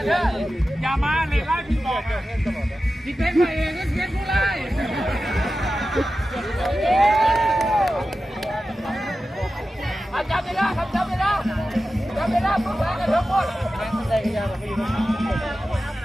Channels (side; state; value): both; normal; correlation 0.93